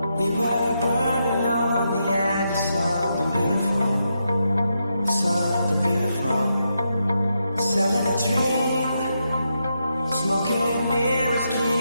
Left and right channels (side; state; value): both; inverted; correlation -0.83